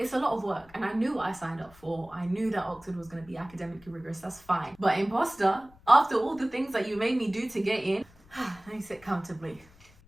It's a lot of work and I knew what I signed up for. I knew that Oxford was going to be academically rigorous, that's fine. But imposter, after all the things that you made me do to get in, let me sit comfortably.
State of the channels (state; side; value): noise; left; rumble, 26 dB below the sound